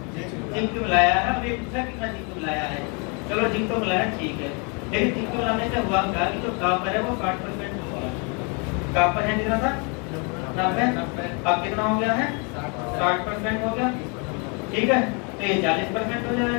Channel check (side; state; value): right; quieter; 34.3 dB